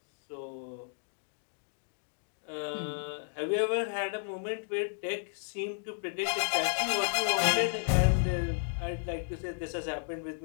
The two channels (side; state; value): right; silent; digital silence